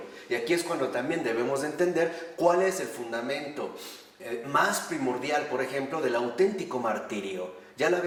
Y aquí es cuando también debemos de entender cuál es el fundamento más primordial, por ejemplo, del auténtico martirio. Ya lo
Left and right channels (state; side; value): identical; both; correlation 1.00